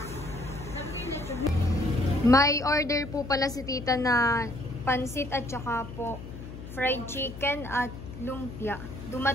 May order po pala si tita na pansit at saka po fried chicken at lumpia.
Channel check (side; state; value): left; noise; hum, 12 dB below the sound